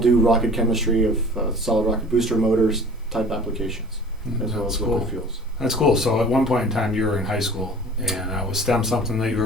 do rocket chemistry of solid rocket booster motors type applications, as well as liquid fuels. That's cool. So at one point in time you were in high school, and was STEM something that you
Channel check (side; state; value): both; normal; correlation 0.44